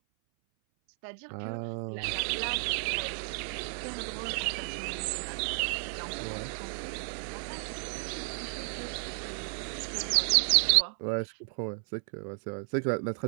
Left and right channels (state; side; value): silent; left; 56 dB below the other